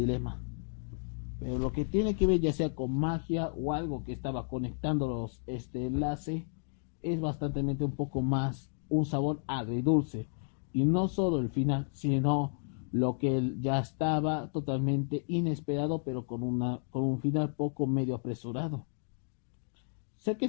Pero lo que tiene que ver ya sea con magia o algo que estaba conectándolos este enlace es bastante un poco más un sabor agridulce. Y no solo el final, sino lo que ya estaba totalmente inesperado, pero con un final poco medio apresurado. Sé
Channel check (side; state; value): right; silent; digital silence